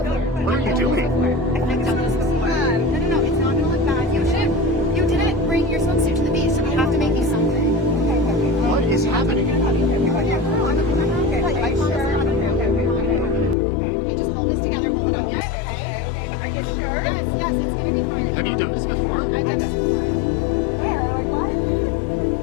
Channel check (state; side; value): drops out; right; at 13.6 s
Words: What are you doing? I've done this before. No, it's not gonna look bad. You didn't bring your swimsuit to the beach, so we have to make you something. What is happening? Okay, just hold this together, hold it up. Are you sure? Yes, it's gonna be fine. Have you done this before? I've done this before.